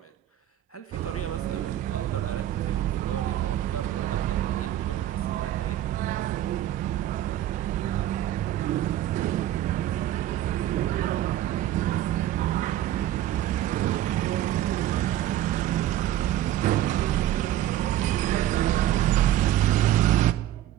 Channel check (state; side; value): quieter; left; 12.8 dB